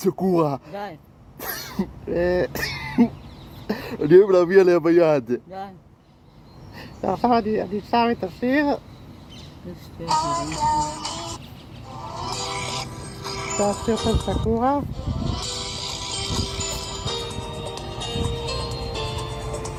די. אני אוהב להביא עליה ביד. די. ועכשיו אני שם את השיר. זה השיר של סקורה.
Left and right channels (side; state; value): both; identical; correlation 1.00